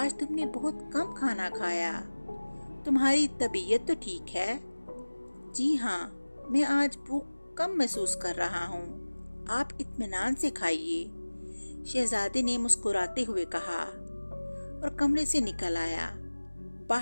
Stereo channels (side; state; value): both; inverted; correlation -1.00